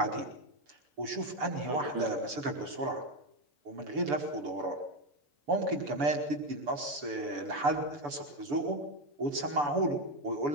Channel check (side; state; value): left; late; 6.9 ms